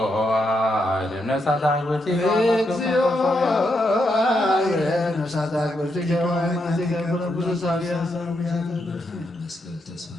ነፍሳት አክብርቲከ እግዚኦ ነፍሳት አክብርቲከ ወአእማዲከ ቅዱሳን መስቀል ተስፋ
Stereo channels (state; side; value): normal; both; correlation 0.81